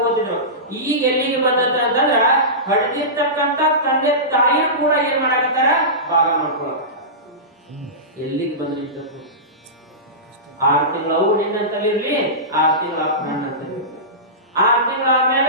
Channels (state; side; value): normal; both; correlation -0.19